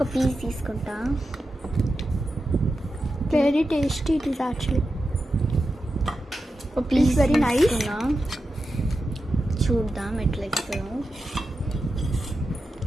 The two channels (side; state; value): both; normal; correlation 0.90